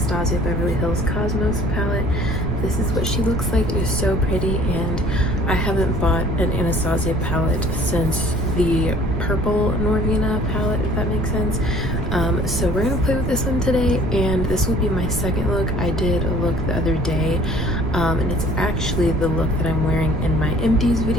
Beverly Hills Cosmos palette. This is what she looks like. It is so pretty, and I haven't bought an Anastasia palette since the purple Norvina palette, if that makes sense. So we're gonna play with this one today, and this will be my second look. I did a look the other day, and it's actually the look that I'm wearing in my empties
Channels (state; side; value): noise; right; rumble, 4 dB below the sound